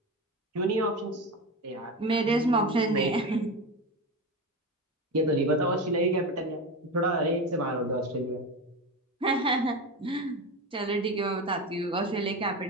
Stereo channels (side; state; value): both; normal; correlation 0.22